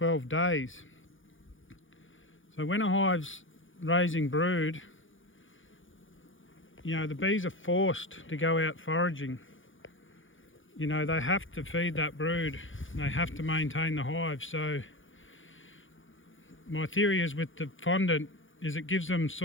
days. So when a hive's raising brood, you know, the bees are forced to go out foraging. You know, they have to feed that brood, they have to maintain the hive. So my theory is with the fondant is it gives them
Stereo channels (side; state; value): right; late; 0.57 ms